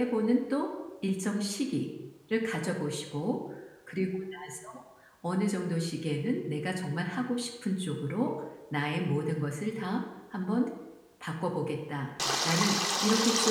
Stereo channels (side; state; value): both; identical; correlation 1.00